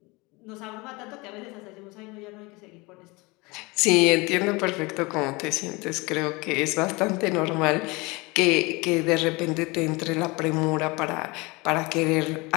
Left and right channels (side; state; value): right; quieter; 25.5 dB